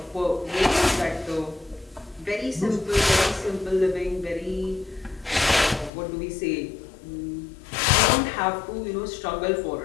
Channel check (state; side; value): drops out; right; at 5.9 s